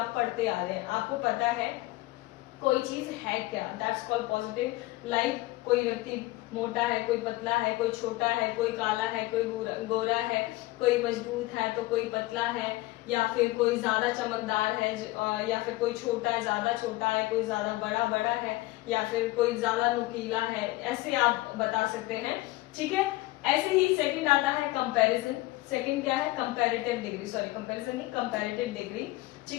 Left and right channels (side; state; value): right; quieter; 19.3 dB